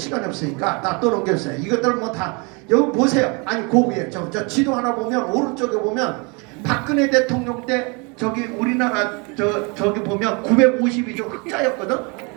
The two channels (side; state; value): left; quieter; 31.2 dB